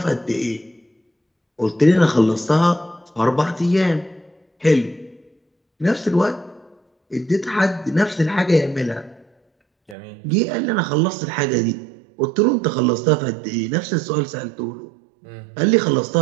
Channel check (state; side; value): drops out; left; at 10.0 s